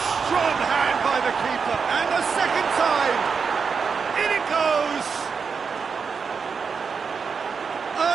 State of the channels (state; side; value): quieter; left; 5.7 dB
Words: strong hand by the keeper, and a second time! In it goes!